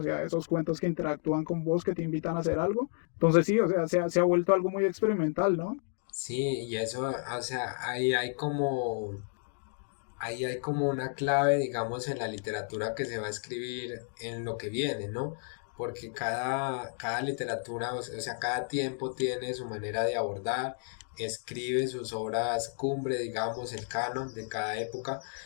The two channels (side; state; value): right; silent; 57 dB below the other